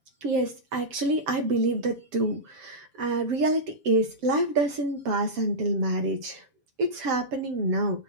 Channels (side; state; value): left; late; 7.1 ms